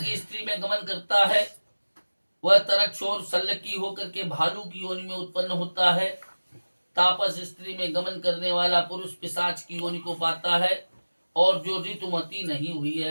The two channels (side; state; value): both; inverted; correlation -1.00